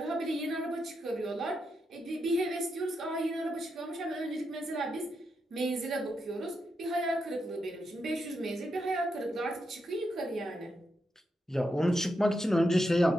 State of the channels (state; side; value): normal; both; correlation 0.84